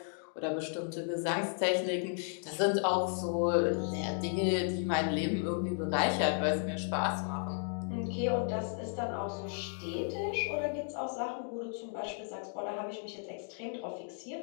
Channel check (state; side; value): silent; right; 55 dB below the other